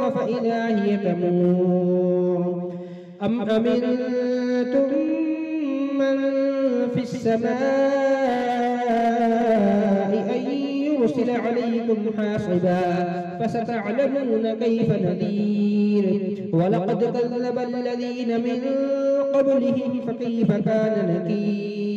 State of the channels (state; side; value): identical; both; correlation 1.00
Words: فإذا هي تمور أم أمنتم من في السماء أن يرسل عليكم حاصبا فستعلمون كيف نذير ولقد كذب الذين من قبلهم فكيف كان